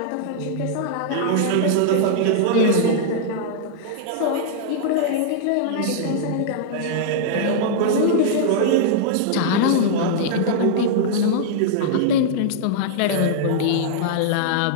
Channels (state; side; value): different; both; correlation -0.02